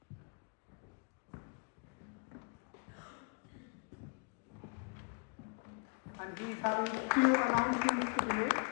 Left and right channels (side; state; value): right; quieter; 35.9 dB